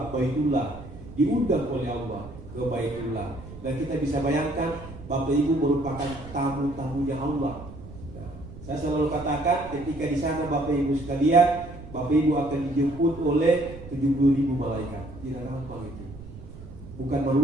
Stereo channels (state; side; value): noise; right; rumble, 15 dB below the sound